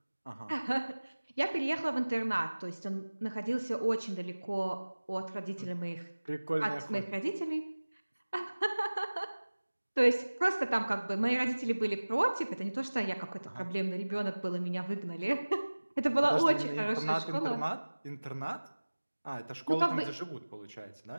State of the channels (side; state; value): both; inverted; correlation -1.00